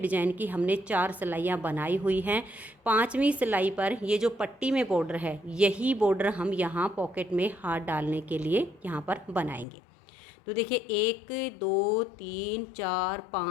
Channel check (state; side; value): drops out; right; at 9.7 s